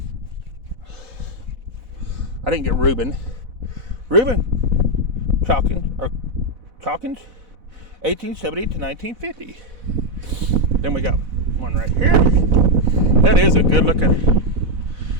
I didn't get Reuben. Chalkins, 1870 to 1950. Then we got one right here. That is a good looking,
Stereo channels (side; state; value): left; late; 4.1 ms